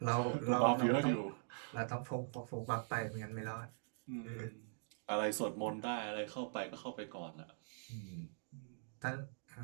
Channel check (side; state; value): left; silent; digital silence